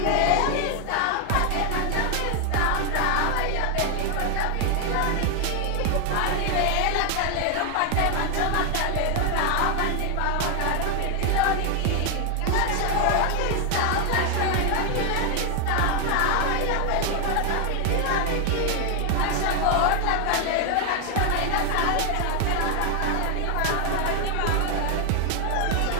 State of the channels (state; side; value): different; both; correlation 0.01